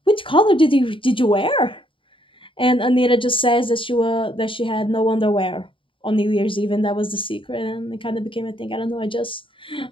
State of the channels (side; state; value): right; late; 0.25 ms